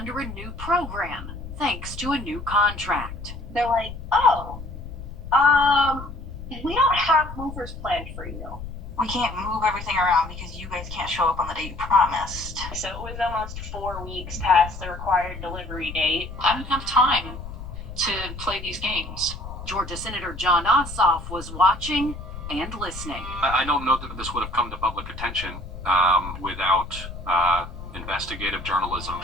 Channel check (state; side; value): noise; left; rumble, 11 dB below the sound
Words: a new program, thanks to a new contract. They're like, we don't have movers planned for you. We can't move everything around because you guys can't show up on the day you promised. So it was almost 4 weeks past the required delivery date. I didn't have time to play these games. Georgia Senator Jon Ossoff was watching and listening. I don't know that this would have come to public attention without investigative journalism